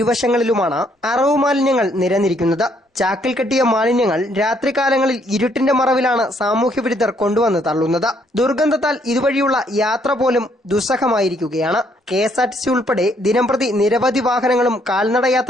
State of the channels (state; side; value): normal; both; correlation 0.69